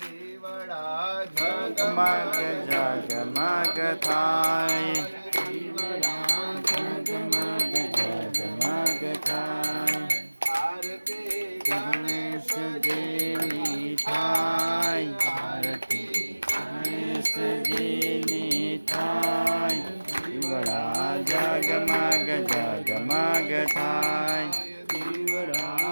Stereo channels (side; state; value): both; inverted; correlation -1.00